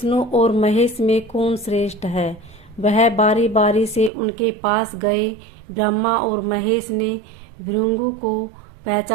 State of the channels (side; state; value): left; drops out; at 4.1 s